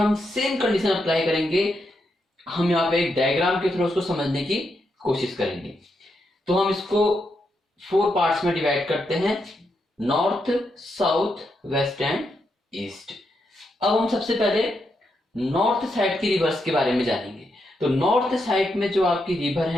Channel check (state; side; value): normal; both; correlation 0.82